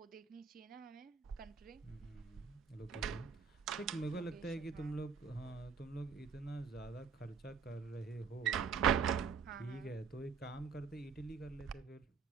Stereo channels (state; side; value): quieter; left; 6.0 dB